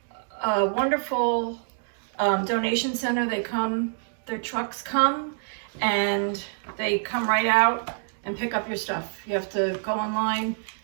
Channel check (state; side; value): silent; left; digital silence